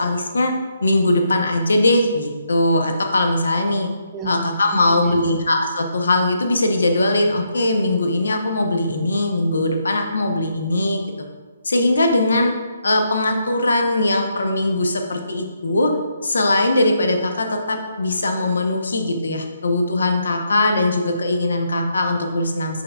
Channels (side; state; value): both; inverted; correlation -0.78